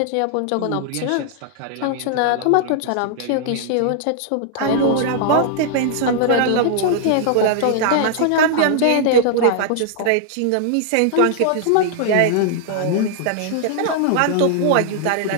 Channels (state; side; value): different; both; correlation -0.01